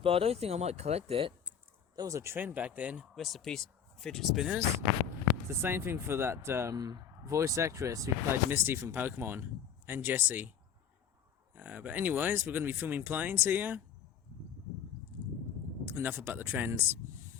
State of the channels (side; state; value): right; quieter; 8.1 dB